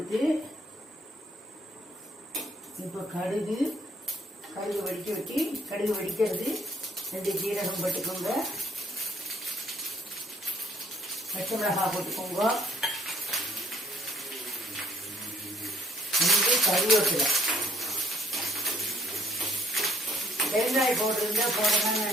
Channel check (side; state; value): both; normal; correlation 0.64